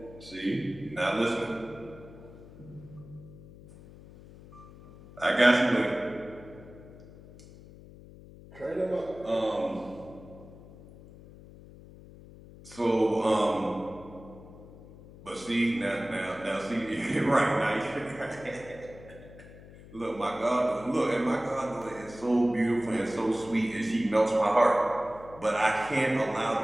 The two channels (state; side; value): noise; left; hum, 19 dB below the sound